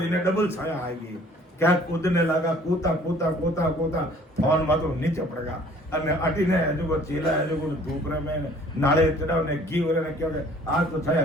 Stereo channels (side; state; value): both; normal; correlation 0.54